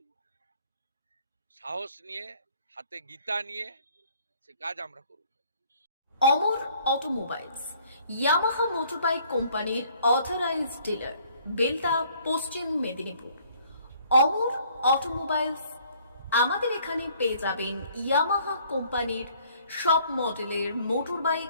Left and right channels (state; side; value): inverted; both; correlation -0.60